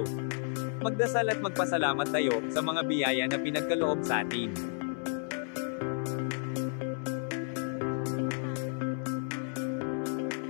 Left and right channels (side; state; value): right; silent; 56 dB below the other